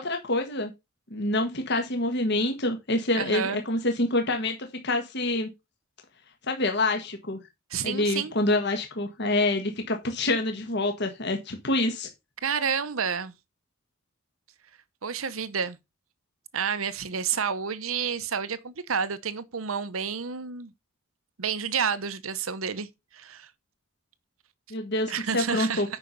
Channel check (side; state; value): both; normal; correlation 0.05